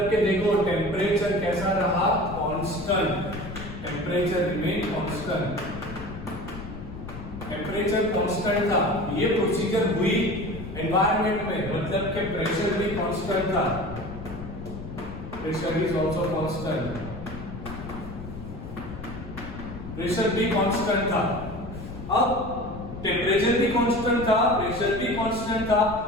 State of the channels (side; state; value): left; noise; rumble, 10 dB below the sound